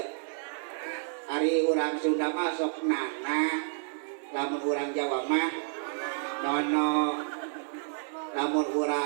ari urang Sunda mah sok nana lamun urang Jawa mah nono lamun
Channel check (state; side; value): silent; left; digital silence